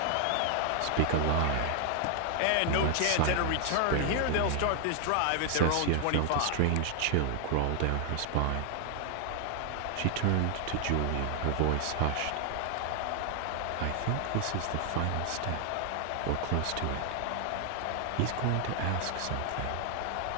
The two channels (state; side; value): different; both; correlation 0.00